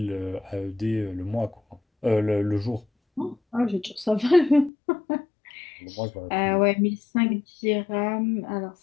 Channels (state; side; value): drops out; right; at 4.7 s